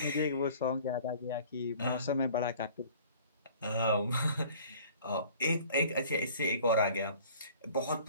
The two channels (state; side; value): inverted; both; correlation -0.50